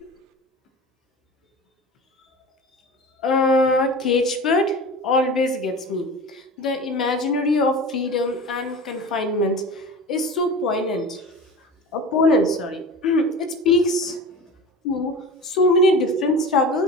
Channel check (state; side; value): normal; both; correlation 0.33